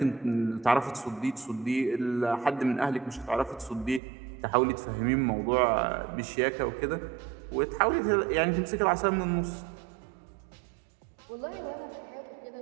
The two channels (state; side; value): drops out; left; at 4.0 s